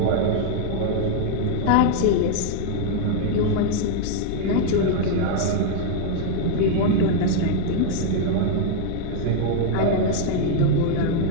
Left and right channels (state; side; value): different; both; correlation 0.00